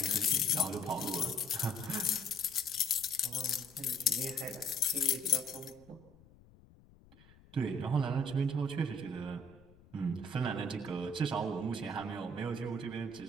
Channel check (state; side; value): noise; left; rumble, 25 dB below the sound